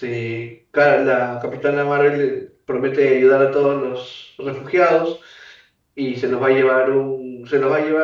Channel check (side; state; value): both; identical; correlation 1.00